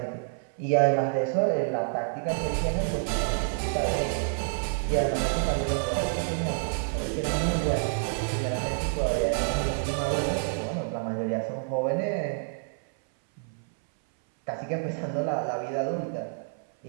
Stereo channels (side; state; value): left; silent; 59 dB below the other